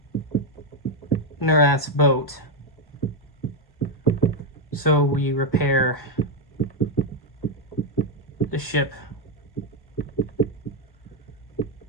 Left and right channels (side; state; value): right; late; 1.1 ms